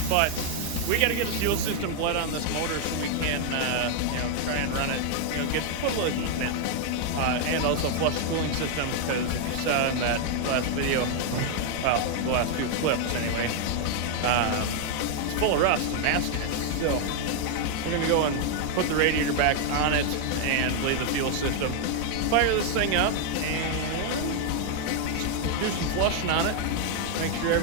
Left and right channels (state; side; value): different; both; correlation 0.00